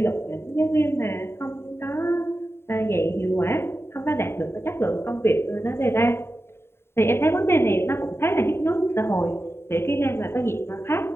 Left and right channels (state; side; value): late; right; 0.12 ms